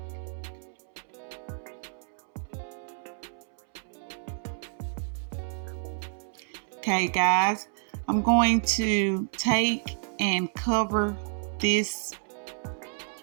Okay guys, I'm going to take and cover this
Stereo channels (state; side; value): silent; left; 58 dB below the other